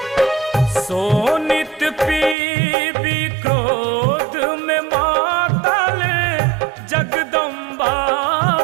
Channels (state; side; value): drops out; left; at 2.4 s